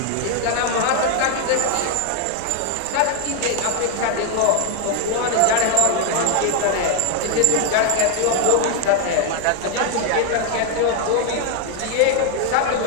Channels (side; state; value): both; different; correlation 0.00